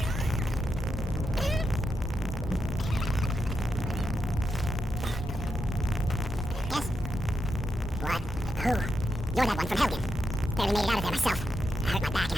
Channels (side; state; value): both; normal; correlation 0.85